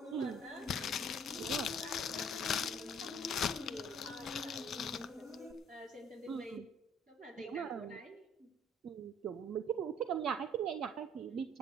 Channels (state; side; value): normal; both; correlation 0.57